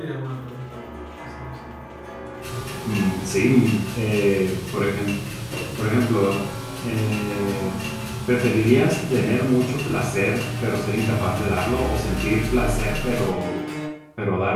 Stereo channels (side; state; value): both; identical; correlation 1.00